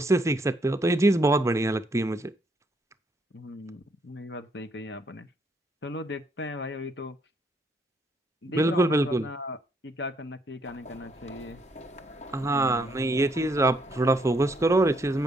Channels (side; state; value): both; normal; correlation 0.71